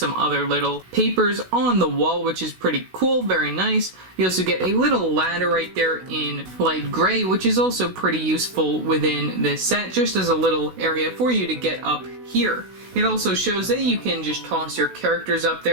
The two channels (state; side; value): late; left; 16 ms